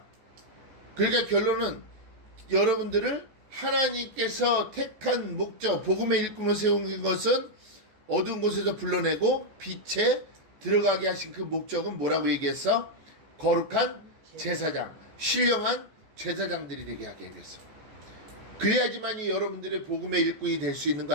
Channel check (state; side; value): late; left; 14 ms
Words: 그러니까 결론은 여러분들을 하나님께서 택한 목적, 복음의 일꾼으로 세운 것은 어두운 곳에서 불러내고 빛에 들어가게 하신 그 목적은 뭐라고 얘기했어? 거룩한 제사장, 신령한 제사장들이 되게 하게 됐어. 그래야지만이 여러분들의 복음의 일꾼이 될 수 있는 거